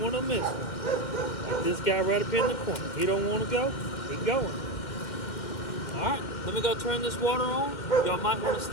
want to miss one. Like this guy right up in the corner. He don't want to go. He going. Alright, let me go turn this water on. Y'all might want to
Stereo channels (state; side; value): late; right; 2.0 ms